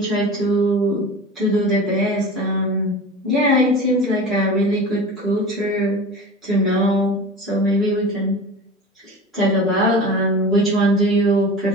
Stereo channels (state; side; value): normal; both; correlation 0.34